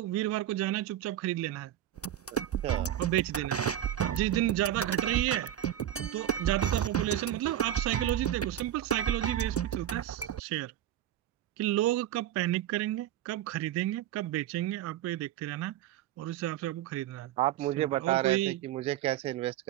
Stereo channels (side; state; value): left; quieter; 12.0 dB